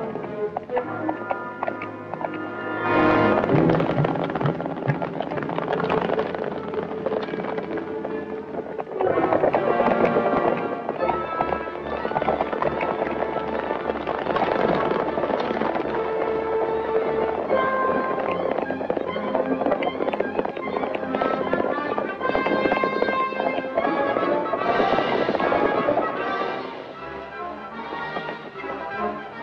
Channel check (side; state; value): both; identical; correlation 1.00